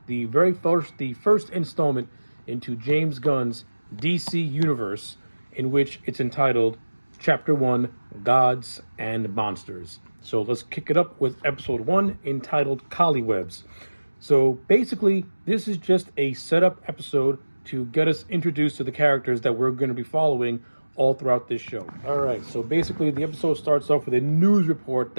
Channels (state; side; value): inverted; both; correlation -1.00